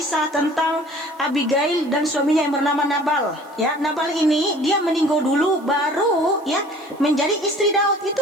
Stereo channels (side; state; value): right; noise; hiss, 28 dB below the sound